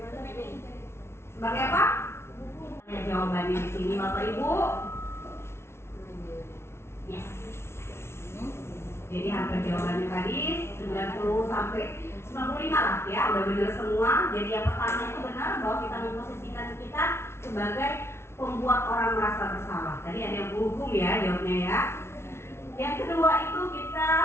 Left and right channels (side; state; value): right; late; 0.12 ms